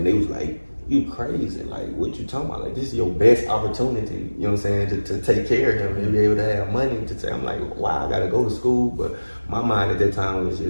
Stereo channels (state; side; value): inverted; both; correlation -1.00